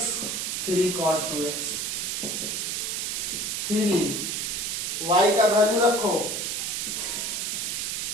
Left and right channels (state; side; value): noise; right; hiss, 1 dB below the sound